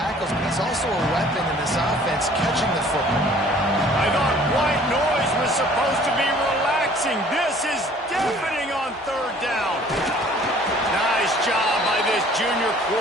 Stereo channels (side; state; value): both; normal; correlation 0.53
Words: but he's also a weapon in this offense catching the football. I thought white noise was supposed to be relaxing. This is deafening on third down. Nice job by this junior